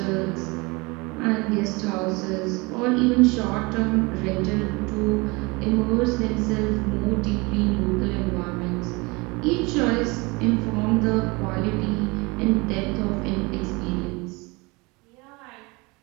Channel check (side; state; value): left; quieter; 25.9 dB